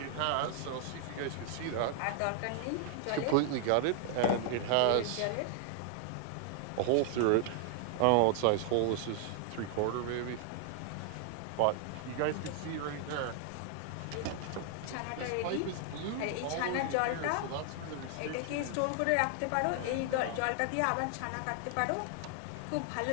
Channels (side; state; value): both; different; correlation 0.00